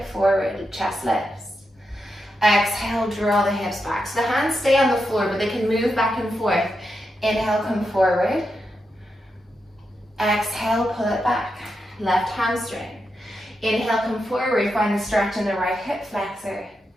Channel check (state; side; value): normal; both; correlation 0.86